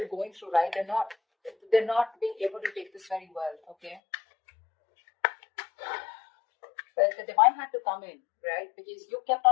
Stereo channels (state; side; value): drops out; right; at 4.0 s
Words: going through, right, they're not being able to take this very well. Okay. But the divine had to come in, right? Because you kept